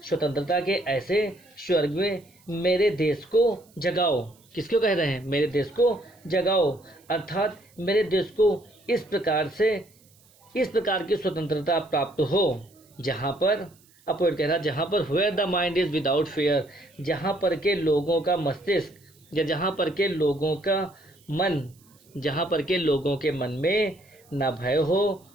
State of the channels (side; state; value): right; noise; hiss, 30 dB below the sound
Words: स्वर्ग में मेरे देश को जगाओ। किसको कह रहे हैं? मेरे देश को जगाओ, अर्थात मेरे देश को इस प्रकार की स्वतंत्रता प्राप्त हो जहाँ पर पोएट कह रहा है जहाँ पर where the mind is without fear, जहाँ पर के लोगों का मस्तिष्क या जहाँ पर के लोगों के मन में न भय हो